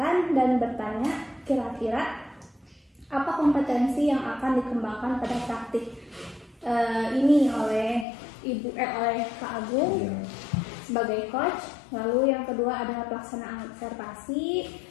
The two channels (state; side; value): drops out; right; at 8.1 s